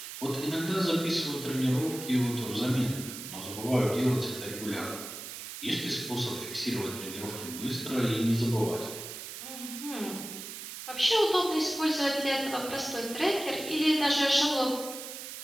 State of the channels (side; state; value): right; noise; hiss, 9 dB below the sound